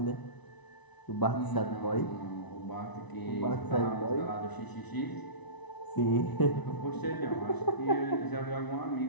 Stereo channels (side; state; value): right; late; 1.0 ms